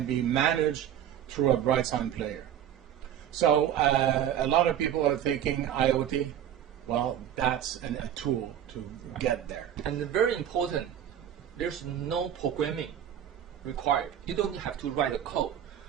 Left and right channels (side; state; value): left; quieter; 10.2 dB